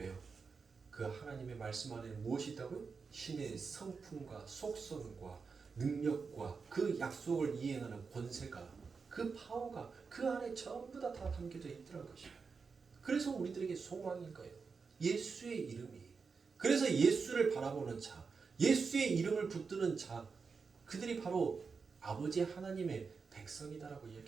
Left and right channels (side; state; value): left; quieter; 5.1 dB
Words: 그 하나님의 말씀 안에 무엇이 있다고요? 신의 성품과 속성과 능력과 그 약속을 이행하는 권세가, 그 파워가 그 안에 전부 다 담겨져 있더라는 것입니다. 그래서 우리들에게 소망인 거예요. 예수의 이름이. 그래서 예수를 바라보는 자, 예수의 이름을 붙드는 자, 그들이 바로 아버지 하나님의 백성이다라고